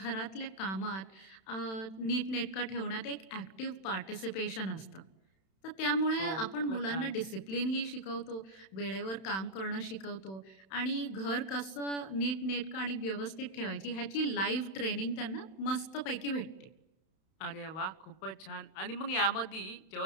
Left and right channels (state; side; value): late; right; 31 ms